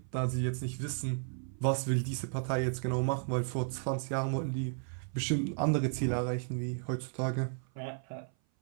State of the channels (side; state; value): left; silent; 55 dB below the other